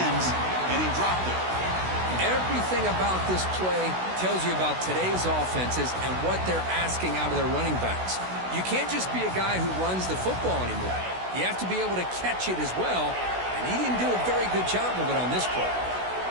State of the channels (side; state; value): left; late; 16 ms